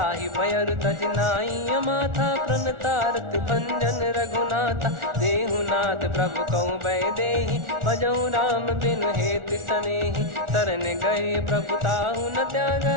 भयर तज नाई माथा प्रणतारत भंजन रघुनाथा देहुनाथ प्रभु कहु बै देहि भजहु राम बिनु हेत सनेहि शरण गए प्रभु ताहु न त्यागा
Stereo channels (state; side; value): late; left; 1.4 ms